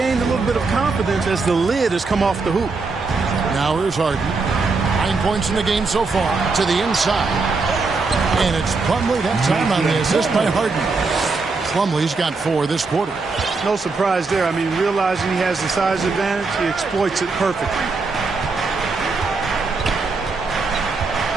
a little bit of confidence as the lid has come off the hoop. Now here's Harden. 9 points in the game so far to the inside. And it's Plumlee that time on the assist by Harden. Plumlee's got 4 this quarter. No surprise there. I mean, realizing he has the size advantage, he exploits it perfectly.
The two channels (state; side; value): quieter; left; 4.1 dB